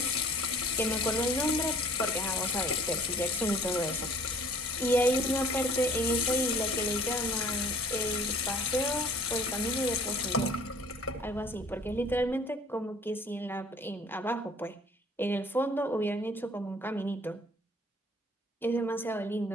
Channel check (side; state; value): both; normal; correlation 0.51